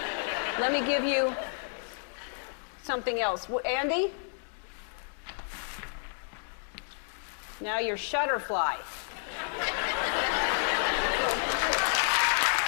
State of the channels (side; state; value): right; silent; digital silence